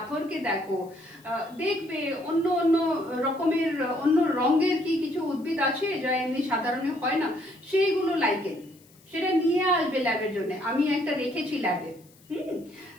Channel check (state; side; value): noise; left; hiss, 28 dB below the sound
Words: দেখো, দেখবে অন্য অন্য রকমের অন্য রঙের কি কিছু উদ্ভিদ আছে যা এমনি সাধারণে হয় না, সেইগুলো লাইকেন। সেটা নিয়ে আসবে ল্যাবের জন্য, আমি একটা রেখেছি ল্যাবে,